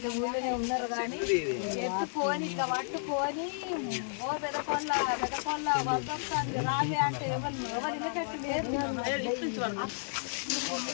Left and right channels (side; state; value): right; silent; digital silence